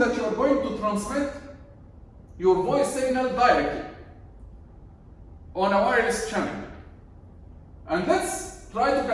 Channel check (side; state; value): both; identical; correlation 1.00